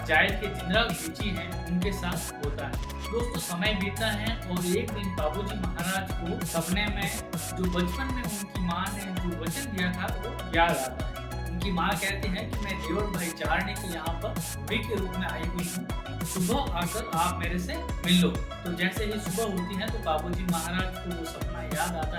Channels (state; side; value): identical; both; correlation 1.00